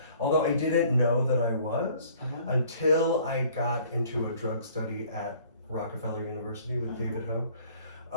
Although I didn't know that I was Uh-huh. until I got into a drug study at Rockefeller University with David Ho.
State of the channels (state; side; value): inverted; both; correlation -0.55